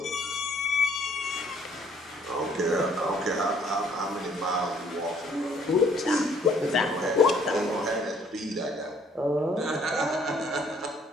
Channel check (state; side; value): normal; both; correlation 0.61